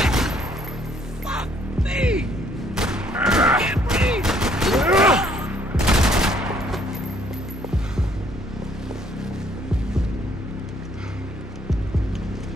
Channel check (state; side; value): normal; both; correlation 0.64